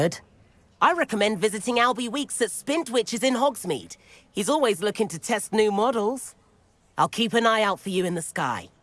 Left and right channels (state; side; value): identical; both; correlation 1.00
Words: I recommend visiting Albie Weeks at Spintwitches in Hogsmeade. He's always looking to test new models. I'll keep an eye out for you in the sky.